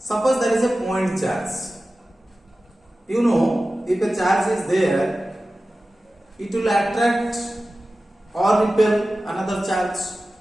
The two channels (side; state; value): both; normal; correlation 0.95